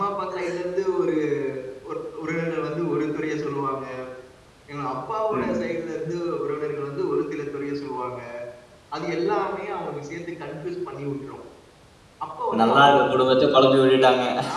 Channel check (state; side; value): identical; both; correlation 1.00